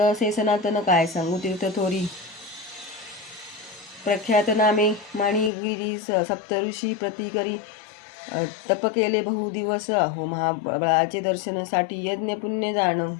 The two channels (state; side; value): drops out; right; at 5.5 s